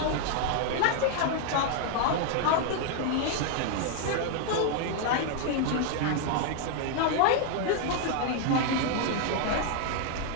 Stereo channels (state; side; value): different; both; correlation 0.00